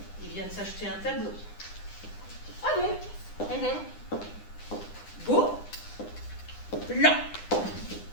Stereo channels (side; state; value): right; late; 9.8 ms